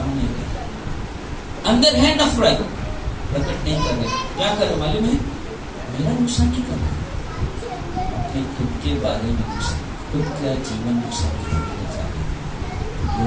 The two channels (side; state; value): both; identical; correlation 1.00